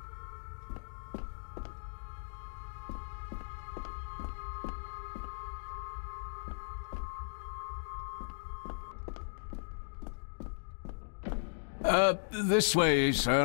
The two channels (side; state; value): right; silent; digital silence